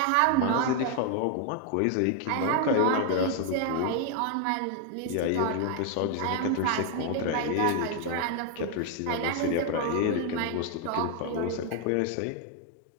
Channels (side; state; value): both; different; correlation 0.00